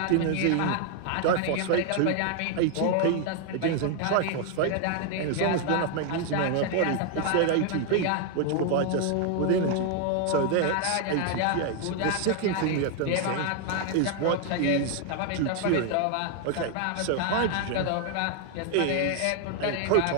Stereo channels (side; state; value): both; different; correlation 0.00